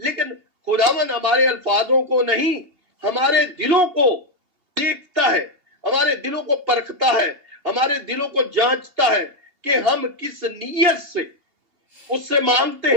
खुदावन हमारे अल्फाजों को नहीं, हमारे दिलों को देखता है, हमारे दिलों को परखता है, हमारे दिलों को जांचता है कि हम किस नीयत से उससे मांगते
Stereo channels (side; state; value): left; late; 2.8 ms